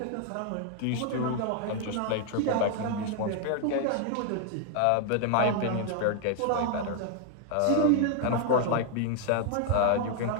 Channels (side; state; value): both; different; correlation 0.00